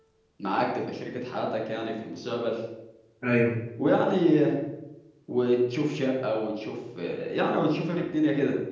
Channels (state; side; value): identical; both; correlation 1.00